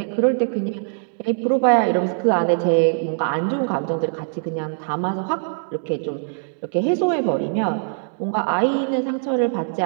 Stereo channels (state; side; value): silent; left; digital silence